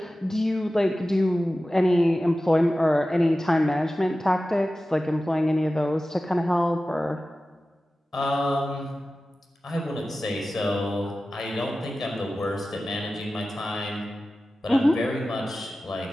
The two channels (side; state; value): both; normal; correlation 0.95